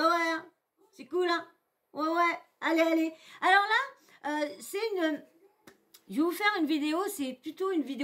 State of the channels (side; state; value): both; identical; correlation 1.00